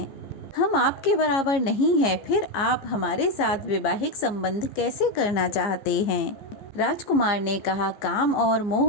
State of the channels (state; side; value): late; right; 15 ms